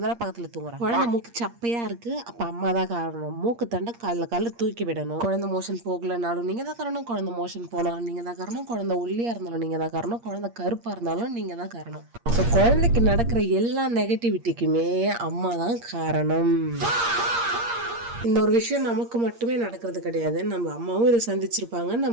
தானே பக்கத்துல தூங்குறான். குழந்தை மூக்கு சப்பையா இருக்கு, அப்ப அம்மா தான் காரணம். மூக்கு தண்டை காலில் தூக்கி விடணும். குழந்தை மோஷன் போகலனாலும் நீங்க தான் காரணம். குழந்தை மோஷன் போனாலும் நீங்க தான் காரணம். குழந்தை ஒல்லியா இருந்தாலும் நீங்க தான் காரணம். குழந்தை கருப்பா இருந்தாலும் நீங்க தான் காரணம். ஸோ குழந்தைக்கு நடக்கிற எல்லா நெகட்டிவிட்டிக்குமே அம்மா தான் காரணம். இந்த ஒரு விஷயம் நமக்கு மட்டுமே நடக்கிறது கிடையாது. நம்ம அம்மாவும் இதை சந்திச்சிருப்பாங்க,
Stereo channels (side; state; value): left; late; 8.6 ms